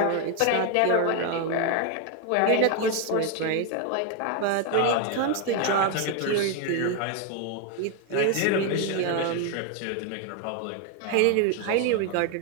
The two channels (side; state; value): both; different; correlation 0.01